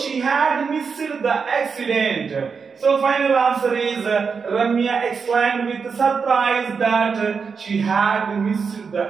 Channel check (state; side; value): quieter; left; 5.6 dB